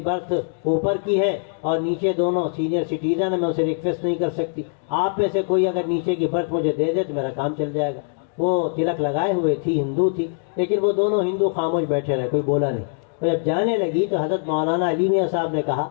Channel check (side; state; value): right; silent; digital silence